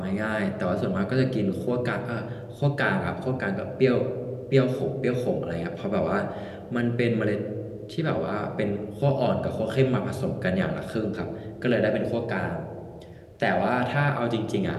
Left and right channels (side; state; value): both; identical; correlation 1.00